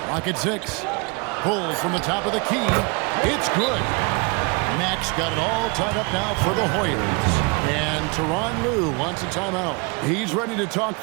Clock at 6. Pulls from the top of the key. It's good. Mack's got it all tied up now for the Hoyas. And Tyronn Lue wants a timeout. He's ready to talk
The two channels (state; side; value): quieter; left; 31.0 dB